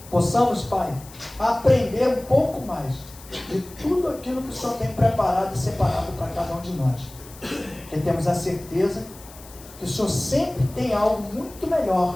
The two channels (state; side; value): noise; left; hiss, 20 dB below the sound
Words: possamos, Pai, aprender um pouco mais de tudo aquilo que o Senhor tem preparado e separado para cada um de nós. Porque temos a certeza que o Senhor sempre tem algo muito melhor